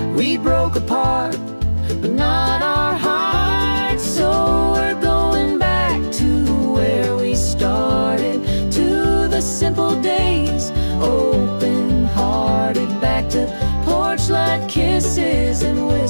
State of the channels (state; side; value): inverted; both; correlation -1.00